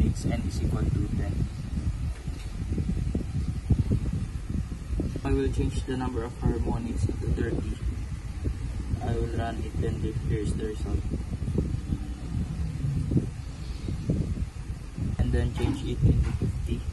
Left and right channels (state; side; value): identical; both; correlation 1.00